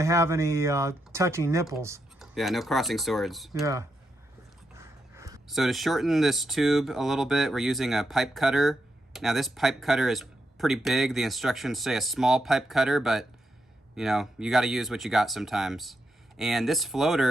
have any touching nipples. Yeah, no crossing swords. Yeah. So to shorten this tube a little bit, we're using a pipe cutter. Now this pipe cutter is pretty big. The instructions say a small pipe cutter, but you gotta use what you got sometimes. And this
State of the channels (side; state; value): both; normal; correlation 0.83